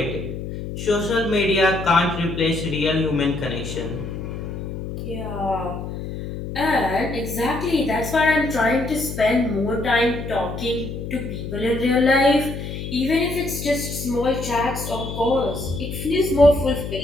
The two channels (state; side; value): noise; left; hum, 7 dB below the sound